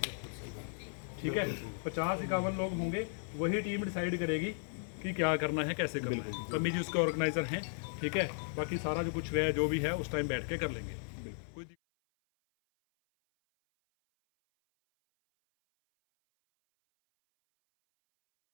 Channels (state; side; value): silent; right; 54 dB below the other